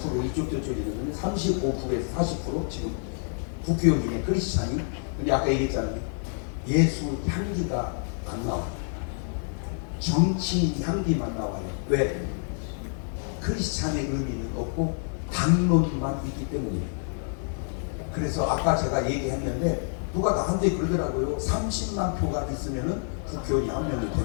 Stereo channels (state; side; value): silent; right; 60 dB below the other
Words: 이쪽 저쪽이거든요. 35%에서 40% 지금 국회의원 중에 크리스찬이. 근데 아까 얘기했잖아요. 예수 향기가 안 나와. 정치인 향기만 나와요. 왜? 크리스찬의 의미는 없고 당론만 있기 때문이에요. 그래서 아까 제가 얘기했는데 누가 나한테 그러더라고요. 30만 표가 있으면은 국회의원이 한 명이